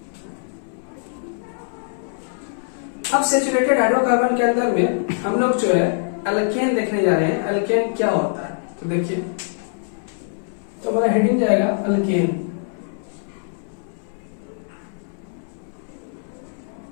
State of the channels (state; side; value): silent; right; 63 dB below the other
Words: अब सैचुरेटेड हाइड्रोकार्बन के अंदर में हम लोग जो है अल्केन देखने जा रहे हैं। अल्केन क्या होता है, तो देखिए, तो हमारा हेडिंग जाएगा अल्केन।